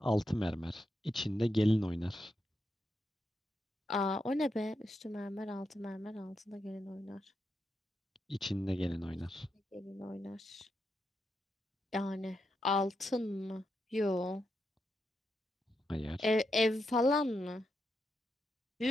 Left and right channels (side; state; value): both; normal; correlation 0.84